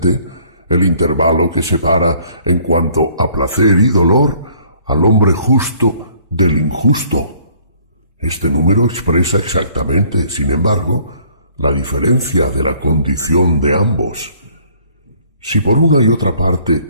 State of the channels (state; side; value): inverted; both; correlation -0.60